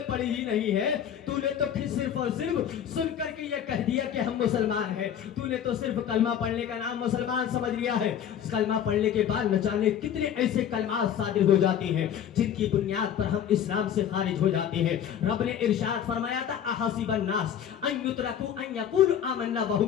پڑھی ہی نہیں ہے، تو نے تو پھر صرف اور صرف سن کر کے یہ کہہ دیا کہ ہم مسلمان ہیں، تو نے تو صرف کلمہ پڑھنے کا نام مسلمان سمجھ لیا ہے۔ کلمہ پڑھنے کے بعد نہ جانے کتنے ایسے کلمات صادر ہو جاتے ہیں جن کی بنیاد پر ہم اسلام سے خارج ہو جاتے ہیں۔ رب نے ارشاد فرمایا تھا احسب الناس ان یترکوا ان یقولوا آمنا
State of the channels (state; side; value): quieter; right; 9.2 dB